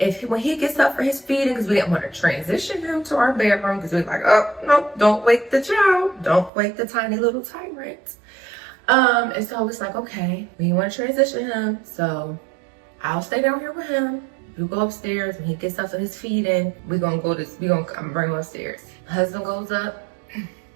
When he gets up for his feeding, because we didn't want to transition him to our bedroom, because we were like, oh no, don't wake the child, don't wake the tiny little tyrant. And so I was like, okay, we want to transition him, so I'll stay down here with him. You go upstairs. When he gets up for his feeding, I'm gonna bring him upstairs. My husband goes up.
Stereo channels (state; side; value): drops out; left; at 6.5 s